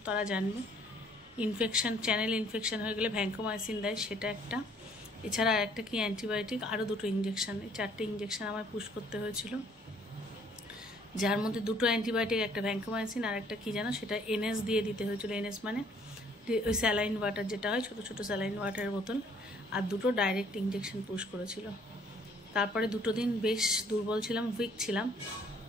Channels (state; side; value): normal; both; correlation 0.61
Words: তারা জানবে চ্যানেল ইনফেকশন হয়ে গেলে ভ্যাঙ্কোমাইসিন দেয়, সেটা একটা। এছাড়া আর একটা কি অ্যান্টিবায়োটিক, আরও দুটো ইঞ্জেকশন, এই 4টে ইঞ্জেকশন আমায় পুশ করতে হয়েছিল, যার মধ্যে দুটো অ্যান্টিবায়োটিক, একটা ভ্যাঙ্কোমাইসিন আর একটা কি জানো, সেটা এনএস দিয়ে দিতে হয়েছিল। এনএস মানে ওই স্যালাইন ওয়াটার যেটা হয়, ছোটো ছোটো স্যালাইন ওয়াটারের বোতল, আর দুটো ডাইরেক্ট ইঞ্জেকশন পুশ করেছিল। তারপরে দুটো দিন বেশ দুর্বল ছিলাম, উইক ছিলাম,